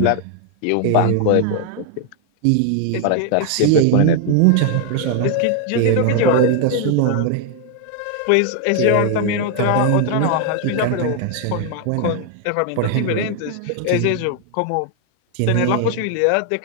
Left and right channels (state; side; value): different; both; correlation 0.00